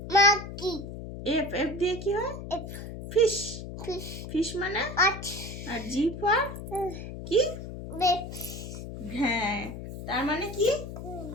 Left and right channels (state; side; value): noise; left; hum, 9 dB below the sound